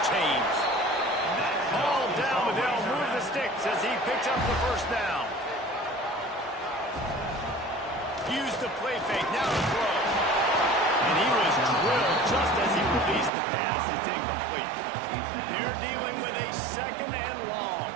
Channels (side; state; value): left; drops out; at 13.3 s